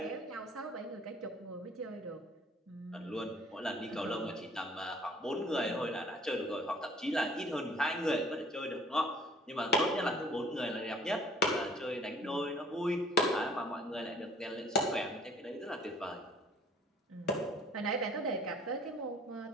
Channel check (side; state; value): both; normal; correlation 0.55